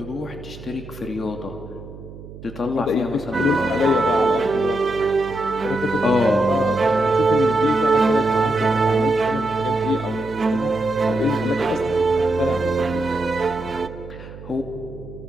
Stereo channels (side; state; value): right; noise; hum, 15 dB below the sound